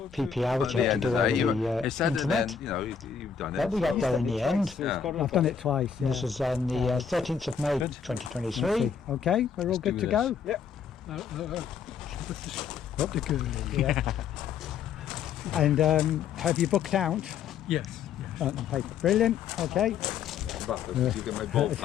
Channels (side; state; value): right; quieter; 7.0 dB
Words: PPR, which you have to do over the internet. You've done But we got there in the end. I've done it twice. Yeah. This is on the 13th of May 2023. Okay, we're all good to go. Yep. Up the good. Yeah. And have you booked out? Yes. On paper. Brilliant. Okay. You get my bolt